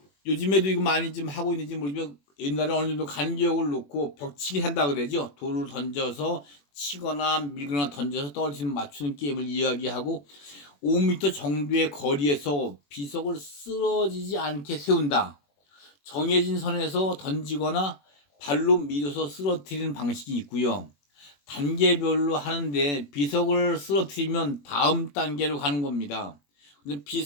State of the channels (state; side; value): late; right; 21 ms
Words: 요즘에도 이거 많이 좀 하고 있는지 모르지만 옛날에 어느 정도 간격을 놓고 벽치기 한다 그러죠. 돌을 던져서 치거나 밀거나 던져서 떨어지는 맞추는 게임을 이야기하고 5m 정도의 거리에서 비석을 쓰러지지 않게 세운다. 정해진 선에서 던지거나 발로 밀어서 쓰러뜨리는 방식이 있고요. 단계별로 하는데 비석을 쓰러뜨리면 다음 단계로 가는 겁니다.